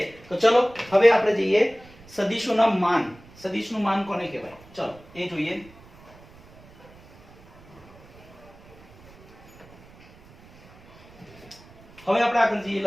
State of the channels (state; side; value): noise; right; rumble, 24 dB below the sound